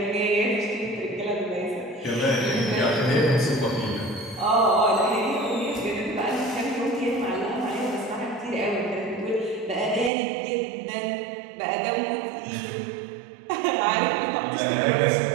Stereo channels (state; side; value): drops out; left; at 10.1 s